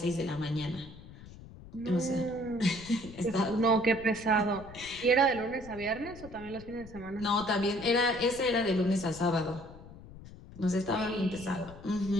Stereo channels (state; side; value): noise; left; rumble, 17 dB below the sound